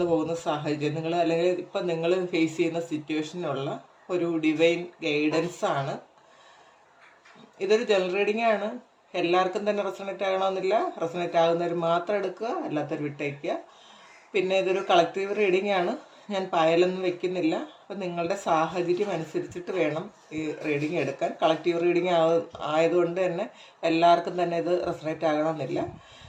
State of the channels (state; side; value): identical; both; correlation 1.00